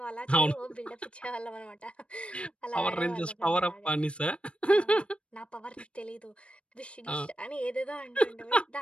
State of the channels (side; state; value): right; late; 0.059 ms